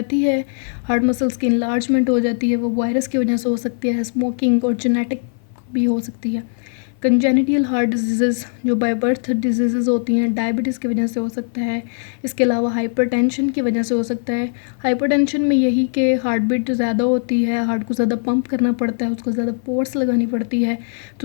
है, हार्ट मसल्स की इनलार्जमेंट हो जाती है, वो वायरस की वजह से हो सकती है, स्मोकिंग और जेनेटिक भी हो सकती है। कंजेनिटल हार्ट डिजीज़ जो बाय बर्थ डिजीज़ होती हैं, डायबिटीज़ की वजह से हो सकता है। इसके अलावा हाइपरटेंशन की वजह से हो सकता है। हाइपरटेंशन में यही कि हार्ट बीट ज़्यादा होती है, हार्ट को ज़्यादा पंप करना पड़ता है, उसको ज़्यादा फोर्स लगानी पड़ती है,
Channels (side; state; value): right; silent; 56 dB below the other